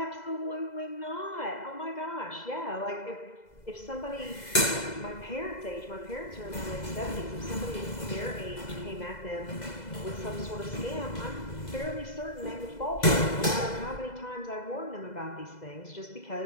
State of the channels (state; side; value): late; right; 2.0 ms